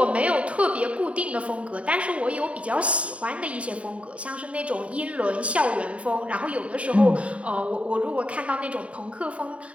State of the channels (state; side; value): late; left; 0.064 ms